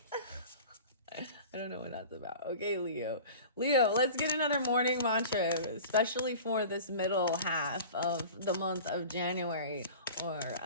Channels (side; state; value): both; inverted; correlation -0.39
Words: I don't know what that's about. Okay, Leo. Leo, let's get another morning mantra, especially for this middle half of the month of January. Or